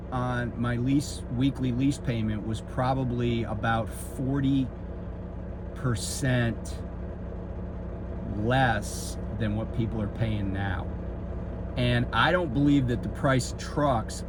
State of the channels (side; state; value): both; identical; correlation 1.00